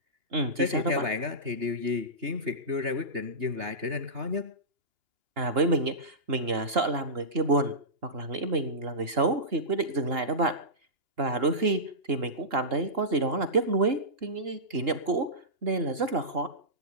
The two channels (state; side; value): late; left; 2.8 ms